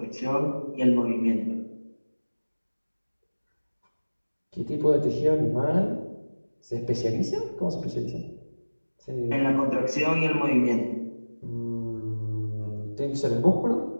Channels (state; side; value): inverted; both; correlation -1.00